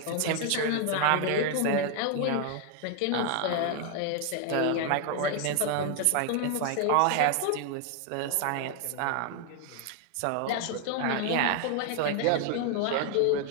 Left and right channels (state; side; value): different; both; correlation 0.00